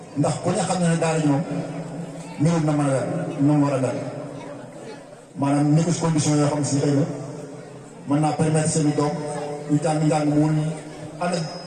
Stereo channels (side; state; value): both; identical; correlation 1.00